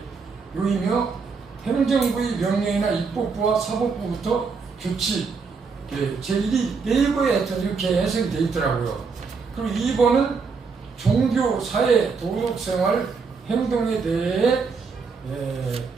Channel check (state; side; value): quieter; left; 5.0 dB